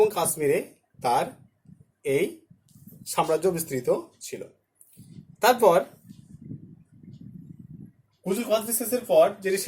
কাশ্মীরে তার এই সাম্রাজ্য বিস্তৃত ছিল। তারপর কুজুল কদফিসেসের পর যিনি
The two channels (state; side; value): identical; both; correlation 1.00